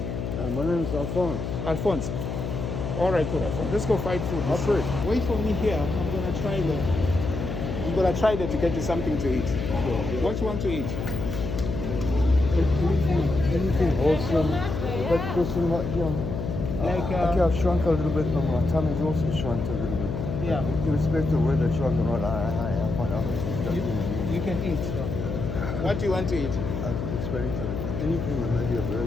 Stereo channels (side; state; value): left; noise; hum, 4 dB below the sound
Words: My name is Alphonse. Alphonse. All right, good, Alphonse. Let's go find food. Alfred. Wait for me here. I'm gonna try there to get you something to eat. What you want to eat? Anything wholesome, but person, I've shrunk a little bit, but my tummy's also shrunk a little bit. Yeah. Irrespective of whether it's shrunk or not, I find other. You can eat. What do you want to eat? I could explain to them. Anything that maybe a